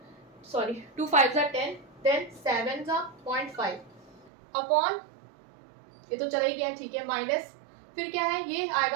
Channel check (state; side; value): drops out; left; at 4.3 s